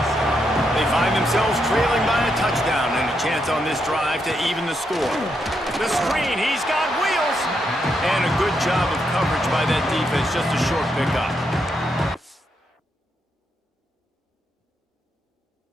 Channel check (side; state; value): both; normal; correlation 0.80